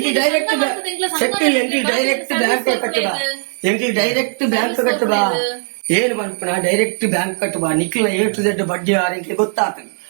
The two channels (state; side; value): silent; left; 65 dB below the other